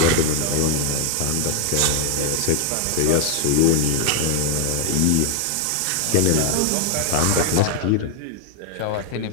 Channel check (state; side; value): different; both; correlation 0.00